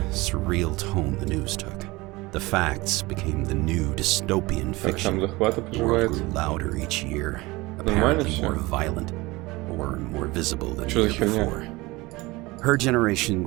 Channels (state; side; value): quieter; left; 21.9 dB